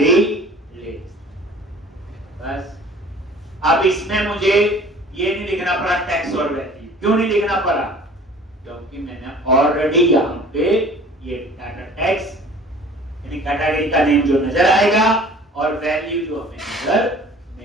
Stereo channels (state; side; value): normal; both; correlation 0.47